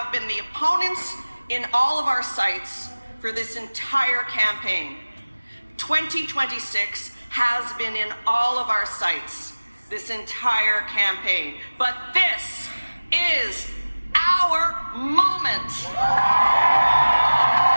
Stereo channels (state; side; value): inverted; both; correlation -1.00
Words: been the opponents in all of our sites for this entire campaign. 2026 has been in all of our sites this entire campaign. But this is our moment.